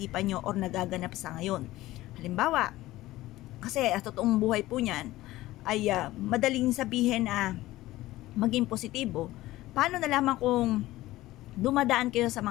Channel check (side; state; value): right; quieter; 16.9 dB